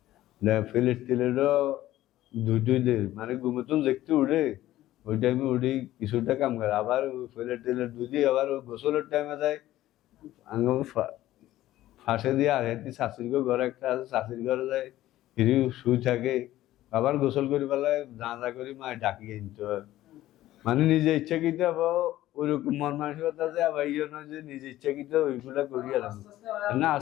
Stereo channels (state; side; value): quieter; right; 14.8 dB